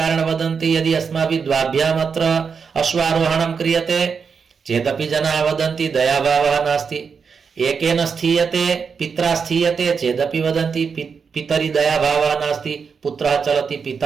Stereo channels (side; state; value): left; quieter; 5.9 dB